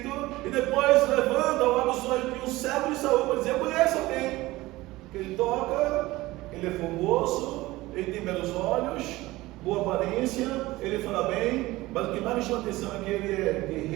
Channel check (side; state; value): left; quieter; 19.0 dB